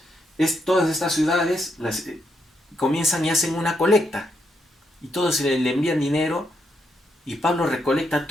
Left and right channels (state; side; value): normal; both; correlation 0.79